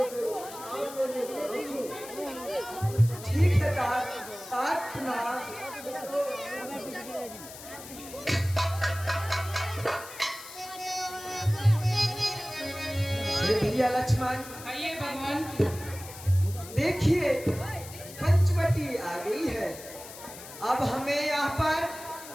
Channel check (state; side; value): noise; left; hiss, 14 dB below the sound